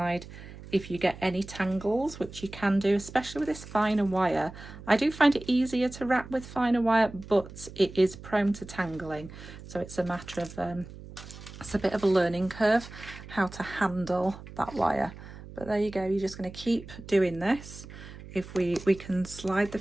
If you get any tangles, which you can do, especially with this finer wire, I do find it easier to wrap with finer wire, but it is prone to tangling. So it's a matter of, it's a bit of a learning curve, how to handle that wire. But there you go, you're just going to keep doing this. If we can slide the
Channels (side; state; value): right; noise; hum, 15 dB below the sound